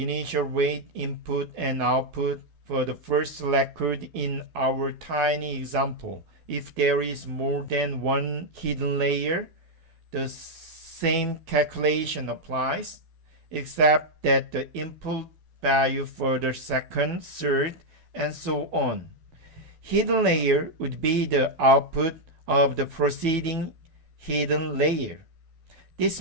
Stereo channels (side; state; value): left; late; 12 ms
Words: weight input and output for the first record in our tiny example. If there is more than one hidden layer, the same calculation applies, except that the input value for the second, third, and so on. Hidden layer would be the output of the preceding hidden layer. This